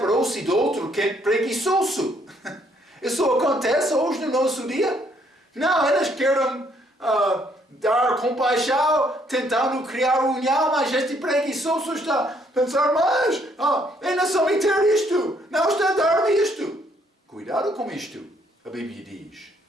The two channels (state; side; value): normal; both; correlation 0.68